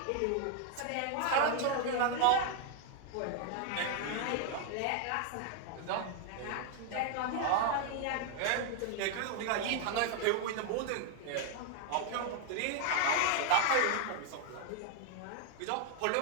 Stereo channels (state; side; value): different; both; correlation 0.00